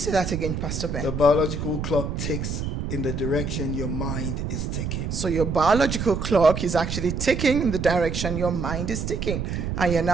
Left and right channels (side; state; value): right; noise; rumble, 3 dB below the sound